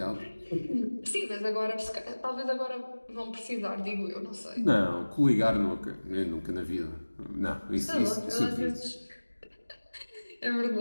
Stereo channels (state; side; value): inverted; both; correlation -1.00